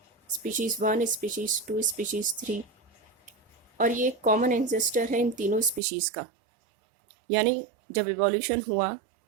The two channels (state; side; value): drops out; left; at 5.8 s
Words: स्पीशीज़ 1, स्पीशीज़ 2, स्पीशीज़ 3, और ये कॉमन एंसेस्टर है इन तीनों स्पीशीज़ का। यानी जब इवोल्यूशन हुआ